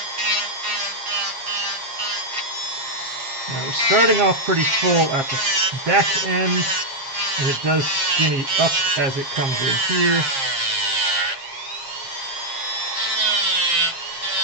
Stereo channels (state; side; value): late; left; 7.5 ms